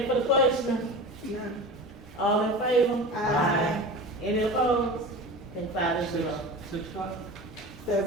for the question? None. All in favor? Aye. Any opposed? And 5-0. 6 o'clock?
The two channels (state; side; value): normal; both; correlation 0.32